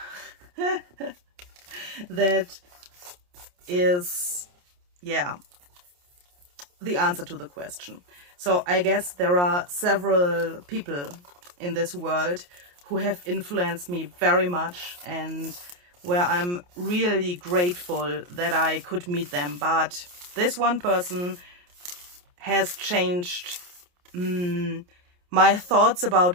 that is, yeah, the answer to the question. So I guess there are several people in this world who have influenced me very much, and where I'm really grateful that I could meet them. But this one person has changed my thoughts about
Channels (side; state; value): left; late; 28 ms